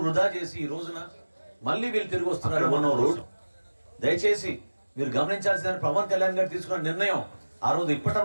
వృధా చేసి ఈ రోజున మళ్ళీ వీళ్ళు తిరిగి వస్తున్నారు మన రోజు. దయచేసి మీరు గమనించాల్సిన పవన్ కళ్యాణ్ గారు తీసుకున్న నిర్ణయం ఆ రోజు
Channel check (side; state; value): both; inverted; correlation -1.00